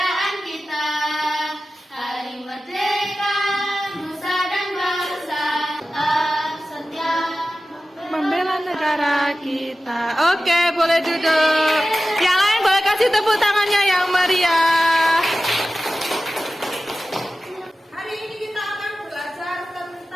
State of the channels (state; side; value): normal; both; correlation 0.95